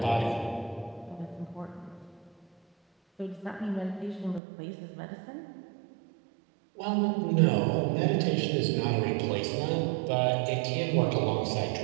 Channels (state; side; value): drops out; left; at 4.4 s